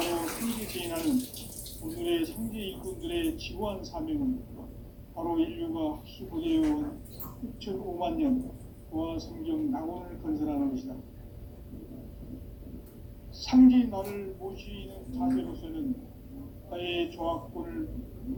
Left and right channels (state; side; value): identical; both; correlation 1.00